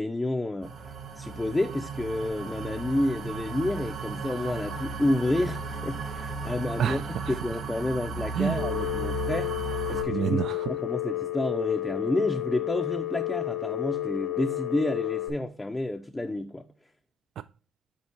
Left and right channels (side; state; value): both; normal; correlation 0.70